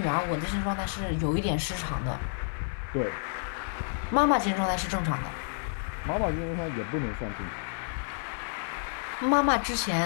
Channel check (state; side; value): silent; right; 58 dB below the other